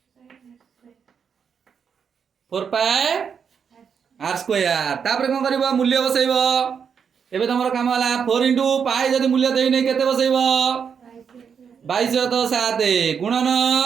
4 पाई r स्क्वायर तापर कोन करबो मूल्य बसैबो एबे तमरो काम होला 4 * पाई जदी मूल्य देई नै केते बसैबो 22 तो 7 गुणन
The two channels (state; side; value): quieter; left; 6.9 dB